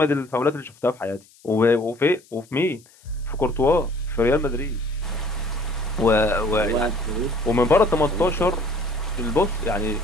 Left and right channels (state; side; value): noise; left; hiss, 28 dB below the sound